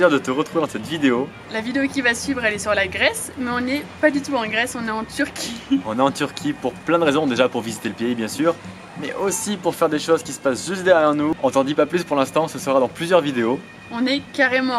de te retrouver dans cette vidéo. La vidéo qui va suivre, elle est sur la Grèce, mais on n'est pas du tout en Grèce, on est en Turquie. On est en Turquie pour plein de raisons, déjà pour visiter le pays bien sûr, mais aussi pour faire des choses qui se passent juste derrière nous. On t'en dit pas plus pour l'instant, ce sera dans plusieurs vidéos. On est carrément en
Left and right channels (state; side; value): identical; both; correlation 1.00